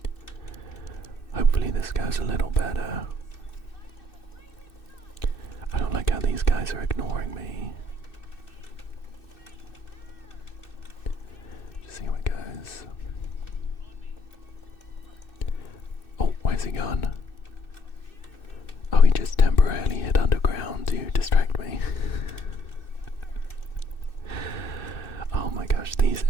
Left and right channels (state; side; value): late; right; 2.6 ms